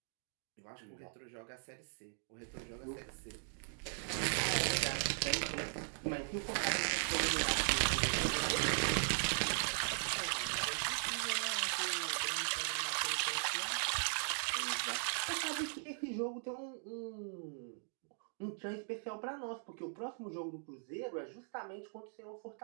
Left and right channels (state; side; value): silent; left; digital silence